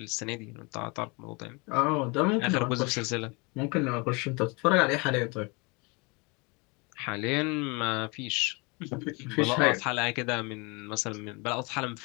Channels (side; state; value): right; quieter; 29.2 dB